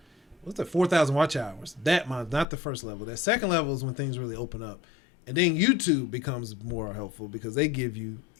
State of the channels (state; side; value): drops out; right; at 2.5 s